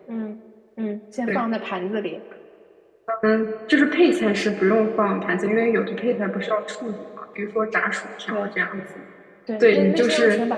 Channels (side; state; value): both; identical; correlation 1.00